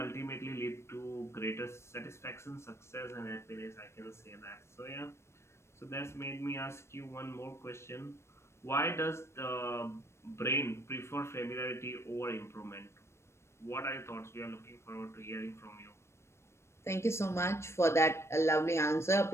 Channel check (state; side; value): late; right; 0.13 ms